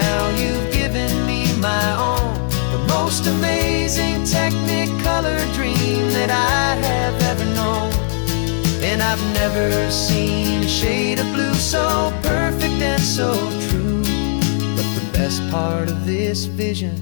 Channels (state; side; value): silent; right; digital silence